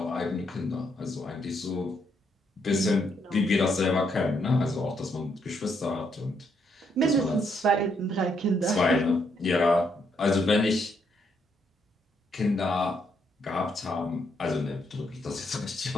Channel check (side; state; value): both; normal; correlation 0.75